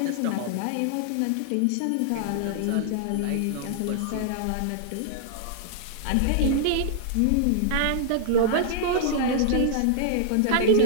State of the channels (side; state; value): both; different; correlation -0.01